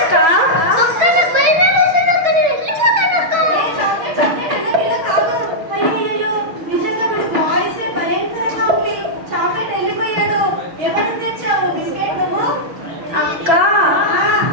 ఏ చాక్లెట్ చాక్లెట్ ఎల్లకిల్ల కాదు. అయ్యయ్యో, నిజంగా వీడి వాయిస్ భయంకరంగా ఉంది. చాక్లెట్ వెళ్ళిపోయాడు. ఎవరికి తెచ్చావు బిస్కెట్ నువ్వు? అక్క ఆ,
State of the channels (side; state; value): left; late; 6.1 ms